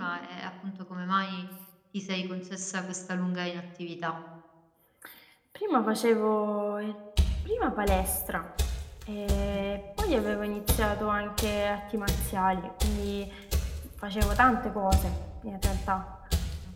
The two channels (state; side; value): identical; both; correlation 1.00